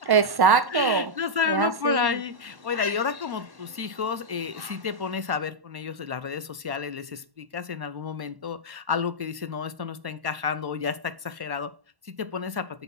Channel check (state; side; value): late; left; 1.1 ms